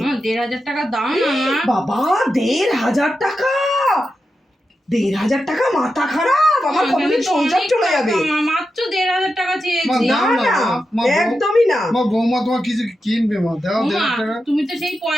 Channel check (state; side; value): normal; both; correlation 0.89